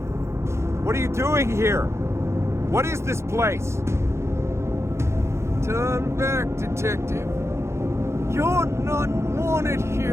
What are you doing here? What is this place? Turn back, detective. You're not wanted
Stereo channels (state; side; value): late; left; 0.13 ms